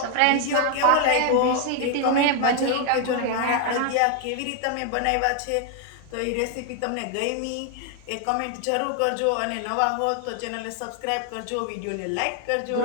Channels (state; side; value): different; both; correlation 0.00